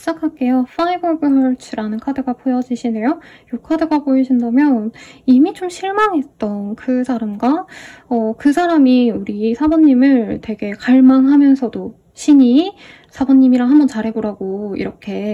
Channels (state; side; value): identical; both; correlation 1.00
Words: Five of Hearts라는 카드가 보여지시네요. 이 카드가 보이신다면 이미 좀 실망했던 그 사람과 그 사람이 우리 사번님을 되게 갈망하면서도 신이 사번님이랑 한번 잘해보라고